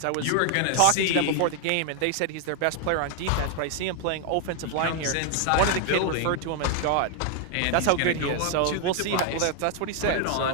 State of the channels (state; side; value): different; both; correlation 0.00